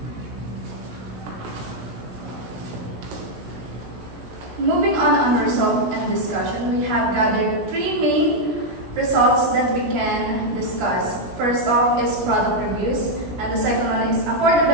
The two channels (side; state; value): left; late; 17 ms